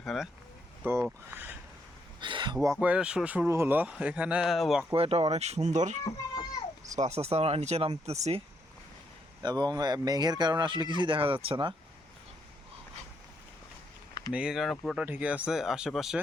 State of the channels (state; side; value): normal; both; correlation 0.76